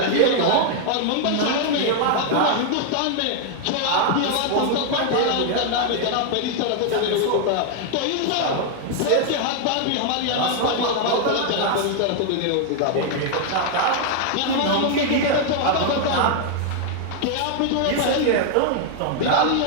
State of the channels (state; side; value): different; both; correlation 0.00